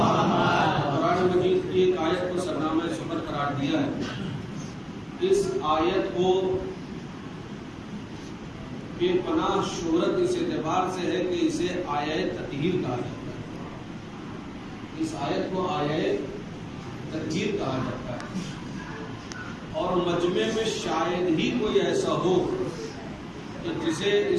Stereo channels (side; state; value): both; identical; correlation 1.00